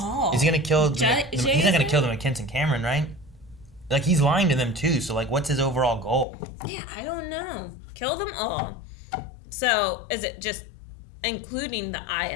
Is he gonna kill he's not Jason? gonna kill the McKinson Cameron, right? Like, he's lying to them too, so like, what's his overall goal? Yeah, I don't know. Kill them all. So, is it just including the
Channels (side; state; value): right; drops out; at 6.2 s